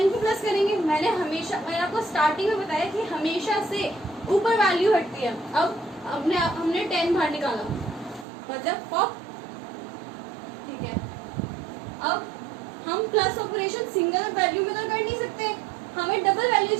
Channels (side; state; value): left; drops out; at 8.2 s